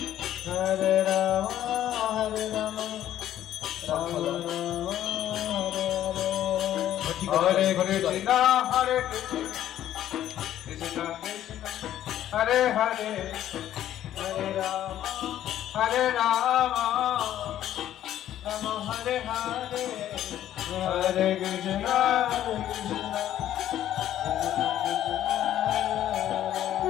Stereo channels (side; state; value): right; quieter; 11.9 dB